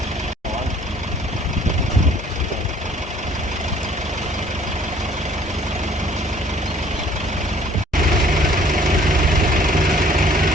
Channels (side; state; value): both; normal; correlation 0.57